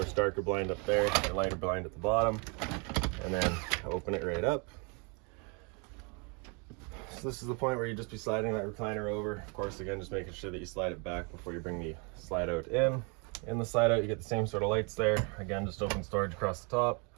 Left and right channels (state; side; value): quieter; left; 34.0 dB